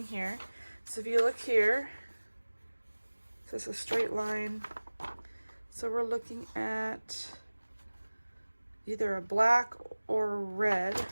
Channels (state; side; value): inverted; both; correlation -1.00